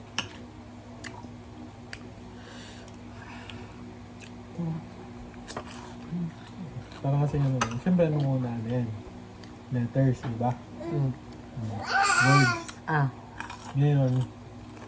Parang kasi ano, siyempre nung una na yan. Letters, diba? Words. Ah. Ngayon,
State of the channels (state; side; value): identical; both; correlation 1.00